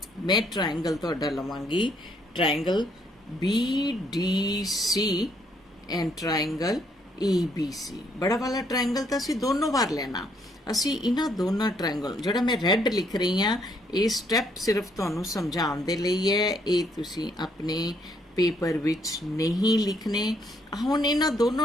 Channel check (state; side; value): normal; both; correlation 0.70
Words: मैं ट्रायंगल तुहाडा लवांगी triangle BDC and triangle ABC। बड़ा वाला ट्रायंगल तो असी दोनों बार लेना। असी इन्हां दोनों ट्रायंगल जिहड़ा मैं रैड लिख रही हाँ ये स्टैप सिर्फ तुहानूं समझाउण दे लई है, ये तुसीं अपने पेपर विच नहीं लिखने। हुण इन्हां